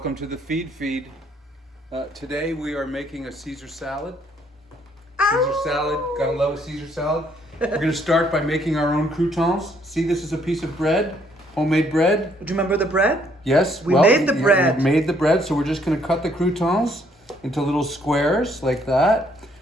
to the feed. Today we are making a Caesar salad. Caesar salad, gotta love a Caesar salad. We're gonna start by making our own croutons. See, this is a piece of bread, homemade bread. Do you remember the bread? Yes, We made the bread. We made the bread, so we're just gonna cut the croutons into little squares like that.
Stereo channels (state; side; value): normal; both; correlation 0.67